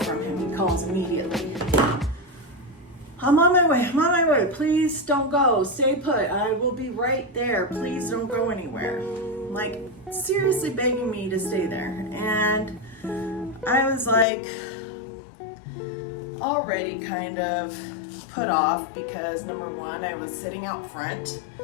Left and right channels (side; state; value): right; drops out; at 14.2 s